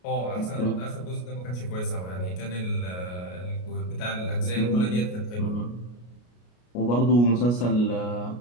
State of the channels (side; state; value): right; late; 33 ms